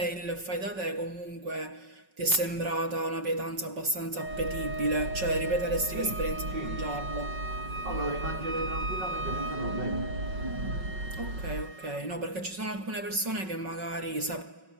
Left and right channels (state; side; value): late; left; 5.4 ms